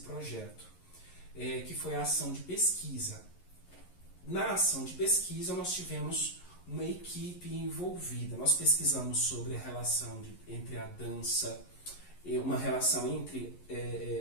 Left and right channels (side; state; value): right; late; 11 ms